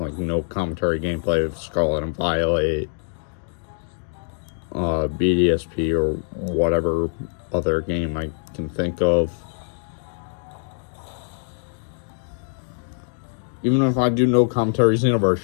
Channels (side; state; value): right; silent; digital silence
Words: no commentary gameplay of Scarlet and Violet, BDSP, or whatever other game I can think of. Even if I do no commentaries